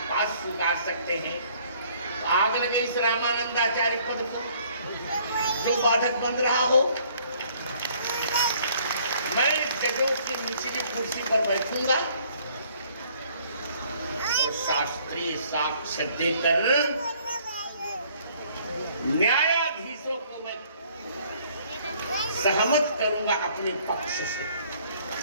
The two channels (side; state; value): both; inverted; correlation -0.60